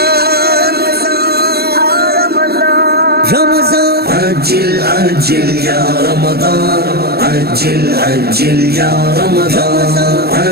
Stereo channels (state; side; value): late; left; 0.46 ms